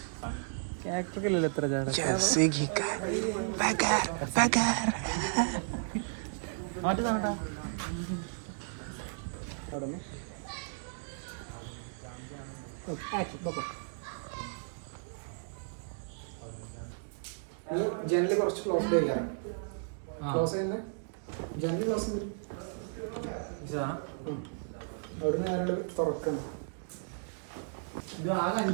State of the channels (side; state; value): left; silent; digital silence